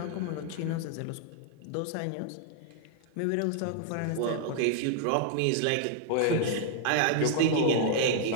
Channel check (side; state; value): both; different; correlation 0.00